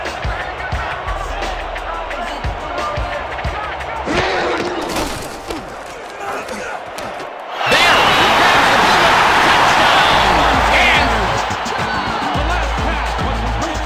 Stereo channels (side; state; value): both; identical; correlation 1.00